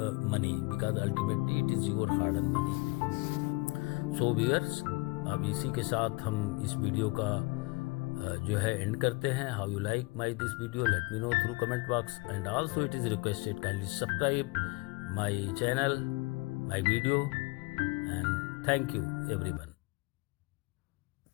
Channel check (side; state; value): right; quieter; 25.2 dB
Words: money, because ultimately it is your hard earned money. So viewers, अब इसी के साथ हम इस video का जो है and करते हैं. How you like my this video, let me know through comment box, and also it is requested kindly subscribe my channel, my video, and thank you everyone.